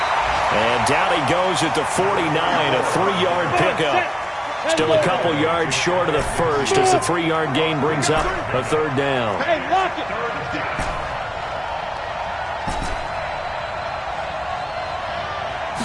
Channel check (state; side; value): identical; both; correlation 1.00